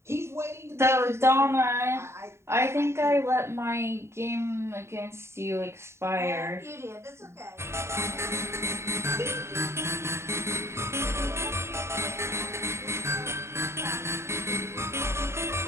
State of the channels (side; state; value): left; late; 0.13 ms